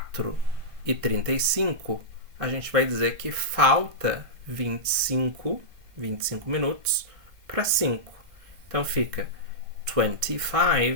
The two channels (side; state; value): left; late; 1.6 ms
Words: a gente vai dizer que falta 25 minutos para 5. Então fica